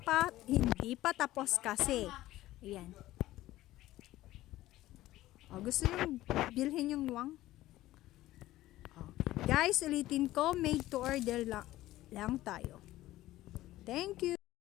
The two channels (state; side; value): quieter; right; 15.9 dB